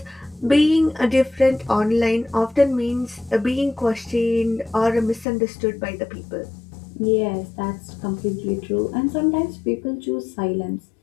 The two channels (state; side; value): drops out; right; at 5.2 s